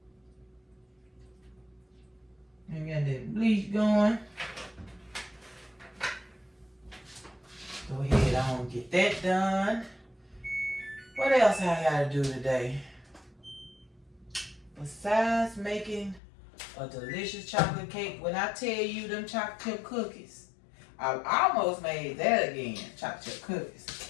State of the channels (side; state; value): right; drops out; at 16.2 s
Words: And got that bleach going. Go ahead on, get that done. What else I gotta do today? Besides making a delicious chocolate cake, when I tell you them chocolate chip cookies, I almost made that again, chocolate chip cookies.